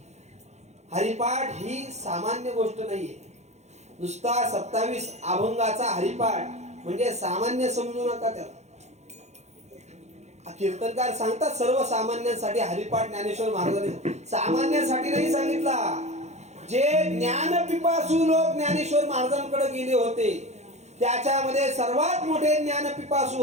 हरिपाठ ही सामान्य गोष्ट नाहीये. नुसता 27 अभंगाचा हरिपाठ म्हणजे सामान्य समजू नका त्याला. कीर्तनकार सांगतात सर्वसामान्यांसाठी हरिपाठ ज्ञानेश्वर महाराजांनी सामान्यांसाठी नाही सांगितला. जे ज्ञान पिपासू लोक ज्ञानेश्वर महाराजांकडे गेले होते त्याच्यामध्ये सर्वात मोठे ज्ञान पिपासू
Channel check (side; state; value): left; late; 0.33 ms